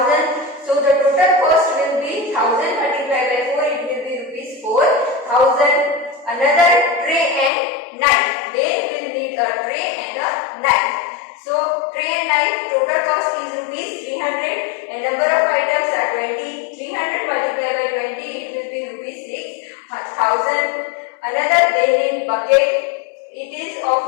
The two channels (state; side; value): drops out; right; at 7.5 s